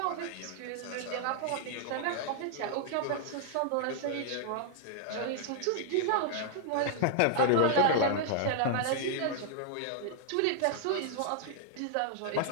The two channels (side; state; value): both; different; correlation -0.01